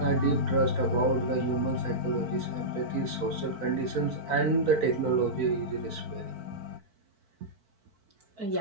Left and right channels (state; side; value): late; left; 4.5 ms